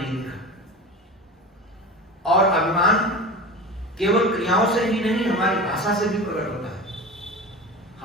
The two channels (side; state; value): both; normal; correlation 0.30